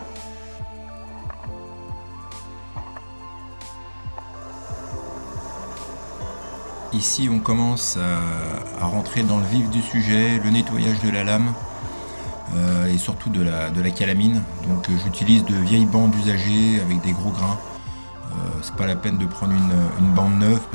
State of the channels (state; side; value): inverted; both; correlation -1.00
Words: Ici on commence à rentrer dans le vif du sujet, le nettoyage de la lame et surtout de la calamine. Donc j'utilise de vieilles bandes usagées avec des gros grains. C'est pas la peine de prendre une bande neuve